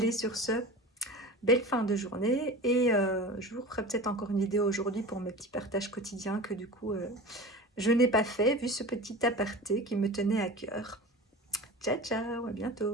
sur ce, belle fin de journée. Et je vous ferai peut-être encore une vidéo aujourd'hui pour mes petits partages quotidiens que du coup, je n'ai pas fait, vu ce petit aparté qui me tenait à cœur. Ciao, ciao, à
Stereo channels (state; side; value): normal; both; correlation 0.33